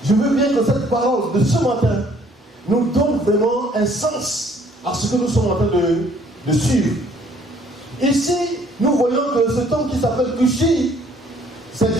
je veux bien que cette parole de ce matin nous donne vraiment un sens à ce que nous sommes en train de suivre. Ici, nous voyons que cet homme qui s'appelle Cushi, c'est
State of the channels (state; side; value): normal; both; correlation 0.61